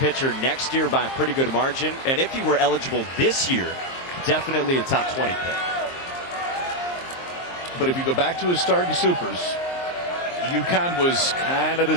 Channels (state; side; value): late; right; 23 ms